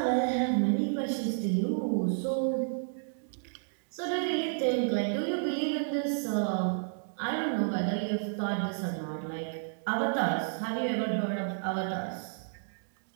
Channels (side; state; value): left; silent; digital silence